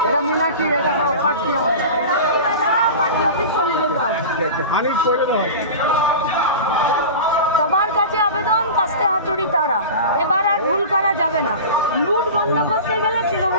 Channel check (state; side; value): inverted; both; correlation -0.32